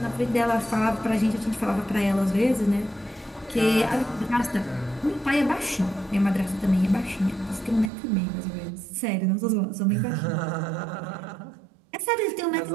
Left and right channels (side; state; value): left; drops out; at 7.9 s